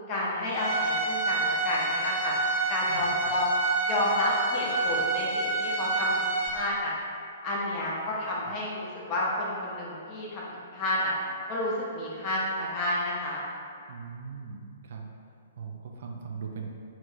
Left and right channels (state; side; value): inverted; both; correlation -0.33